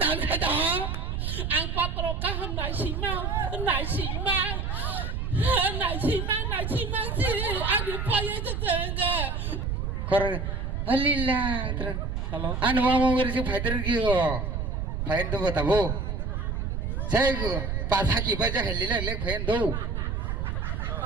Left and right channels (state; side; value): noise; right; rumble, 2 dB below the sound